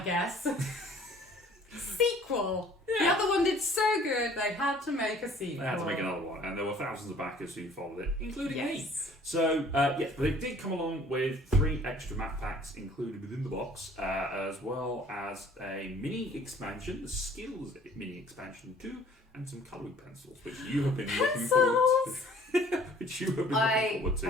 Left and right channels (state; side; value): normal; both; correlation 0.54